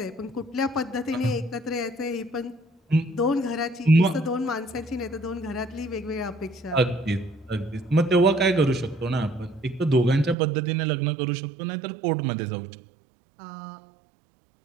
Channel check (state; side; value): drops out; left; at 10.4 s